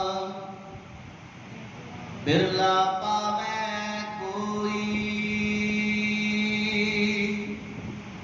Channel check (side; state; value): both; identical; correlation 1.00